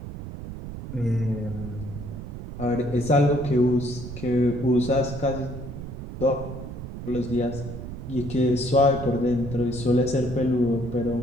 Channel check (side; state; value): right; noise; rumble, 9 dB below the sound